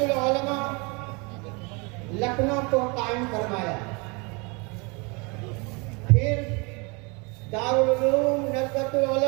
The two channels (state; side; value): quieter; left; 29.8 dB